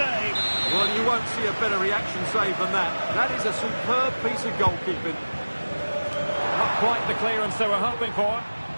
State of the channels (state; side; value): inverted; both; correlation -1.00